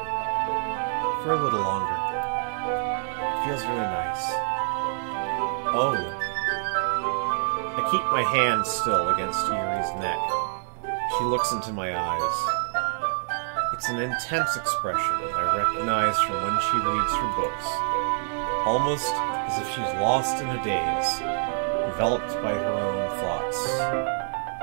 for a little longer. It feels really nice. Oh. I keep my hand still against Yuri's neck. She looks into my eyes. It's an intense expression that I recognize from when she reads her books. Almost as if she's lost in a daze, enveloped by her own thoughts.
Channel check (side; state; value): left; silent; digital silence